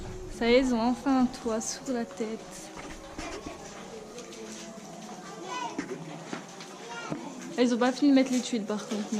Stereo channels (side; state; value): both; identical; correlation 1.00